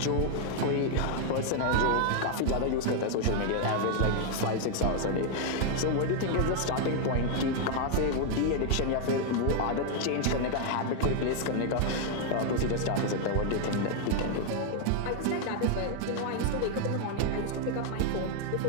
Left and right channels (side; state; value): both; different; correlation 0.00